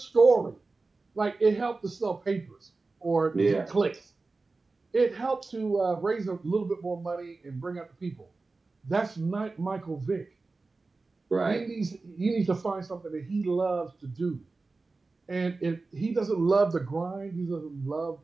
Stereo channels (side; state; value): left; quieter; 3.7 dB